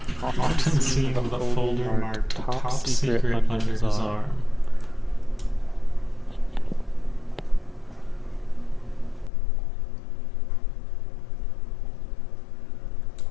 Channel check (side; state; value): right; drops out; at 9.3 s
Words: Often seen with a folder marked Top Secret under his arm.